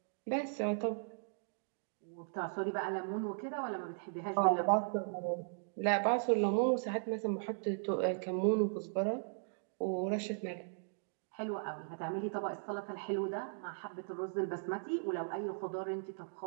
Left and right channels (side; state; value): left; silent; digital silence